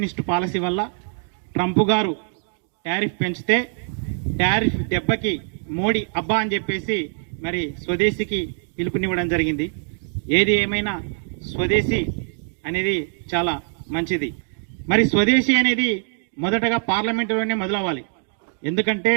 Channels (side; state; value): left; silent; 62 dB below the other